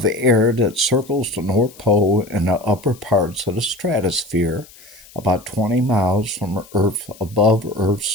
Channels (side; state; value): left; noise; hiss, 23 dB below the sound